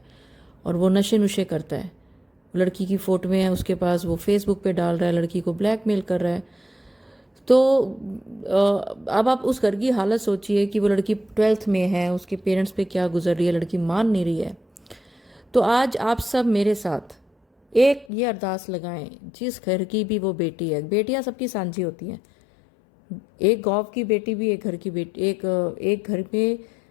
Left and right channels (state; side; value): drops out; right; at 18.1 s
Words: और वो नशे नुशे करता है। लड़की की फोटो में है उसके पास, वो फेसबुक पे डाल रहा है, लड़की को ब्लैकमेल कर रहा है। तो अब आप उस घर की हालत सोचिए कि वो लड़की 12th में है, उसके पेरेंट्स पे क्या गुजर रही है, लड़की मान नहीं रही है। तो आज आप सब मेरे साथ एक ये अरदास लगाएं, जिस घर की भी वो बेटी है, बेटियां सबकी सांझी होती हैं, एक गांव की बेटी भी एक घर की बेटी, एक घर में